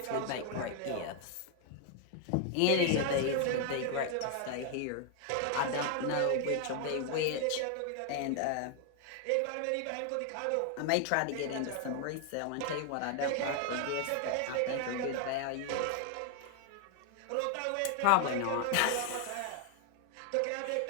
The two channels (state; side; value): different; both; correlation 0.00